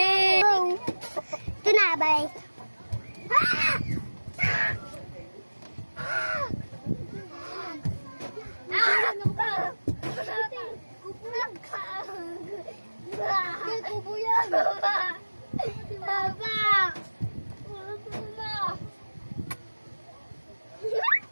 Ito na, bye.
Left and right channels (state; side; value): inverted; both; correlation -1.00